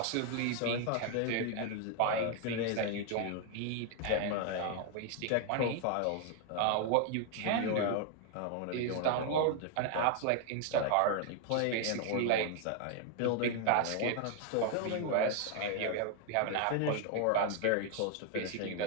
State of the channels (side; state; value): both; different; correlation 0.00